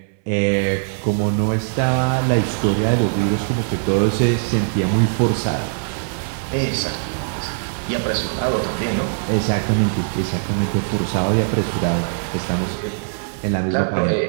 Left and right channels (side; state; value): left; silent; 65 dB below the other